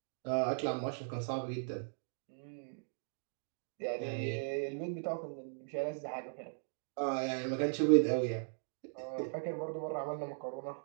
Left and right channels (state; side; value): silent; left; digital silence